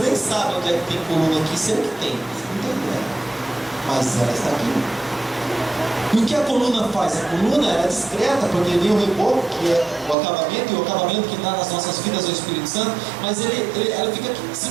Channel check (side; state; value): left; drops out; at 10.2 s